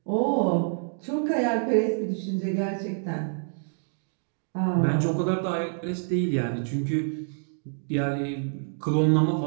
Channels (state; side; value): silent; left; digital silence